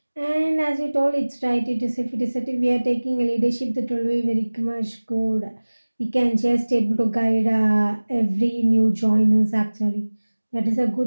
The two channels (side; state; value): both; inverted; correlation -1.00